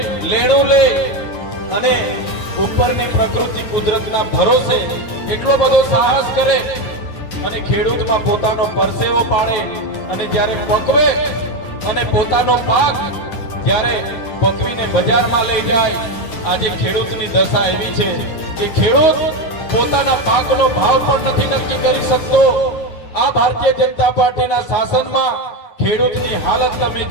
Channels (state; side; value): late; right; 9.6 ms